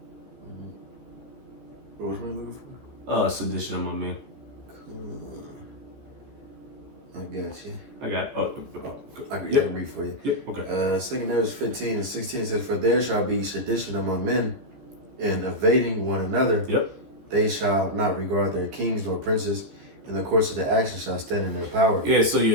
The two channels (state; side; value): late; left; 15 ms